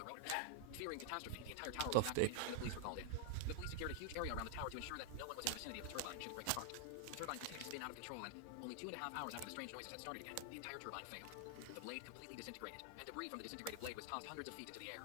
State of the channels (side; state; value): both; different; correlation 0.00